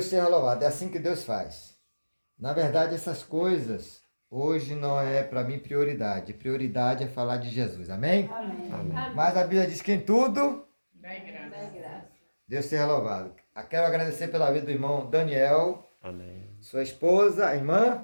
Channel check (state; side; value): inverted; both; correlation -1.00